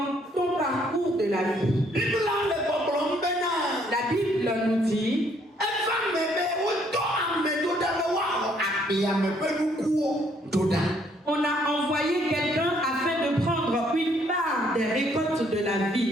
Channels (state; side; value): normal; both; correlation 0.67